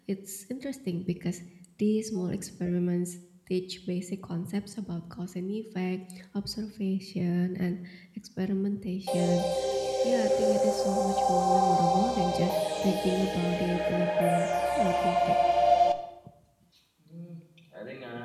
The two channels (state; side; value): identical; both; correlation 1.00